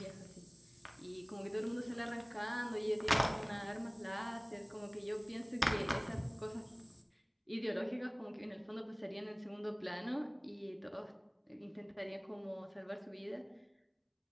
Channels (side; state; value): both; identical; correlation 1.00